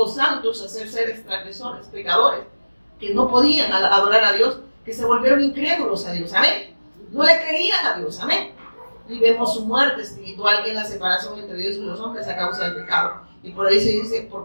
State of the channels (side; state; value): both; inverted; correlation -1.00